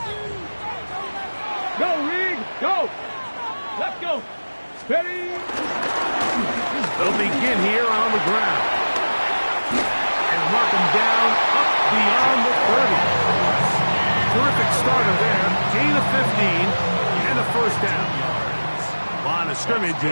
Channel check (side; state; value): both; inverted; correlation -1.00